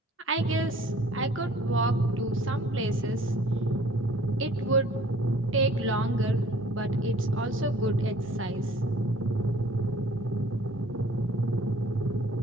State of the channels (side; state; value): both; normal; correlation 0.53